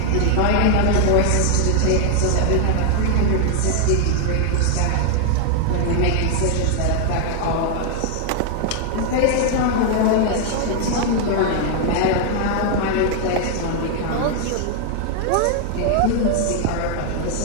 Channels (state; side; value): different; both; correlation 0.00